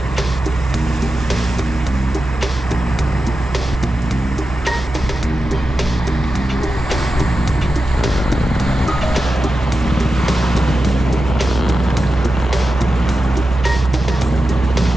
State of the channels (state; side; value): normal; both; correlation 0.92